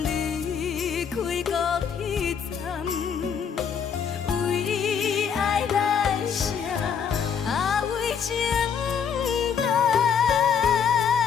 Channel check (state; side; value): quieter; right; 7.1 dB